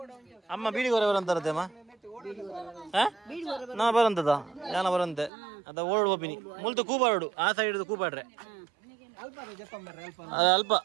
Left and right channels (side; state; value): left; drops out; at 5.3 s